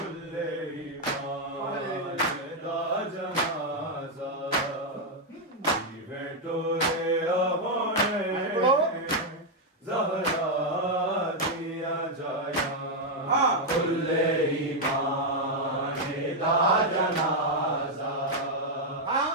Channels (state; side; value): normal; both; correlation 0.00